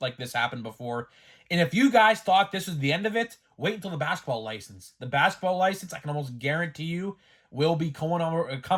this happen before. And if you guys thought this was the end of it, wait until the basketball license. The basketball license, I can almost guarantee you, will be coming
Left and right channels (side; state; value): both; identical; correlation 1.00